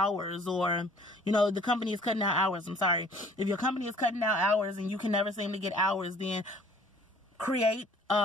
or, you know, the company is cutting down hours, I'm sorry. If your company is cutting down hours and you can never seem to get hours, then create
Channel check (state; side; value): normal; both; correlation 0.54